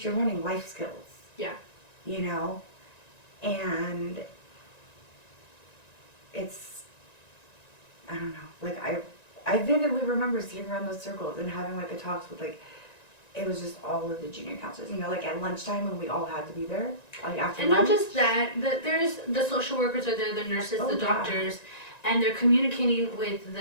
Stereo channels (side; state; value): right; late; 1.9 ms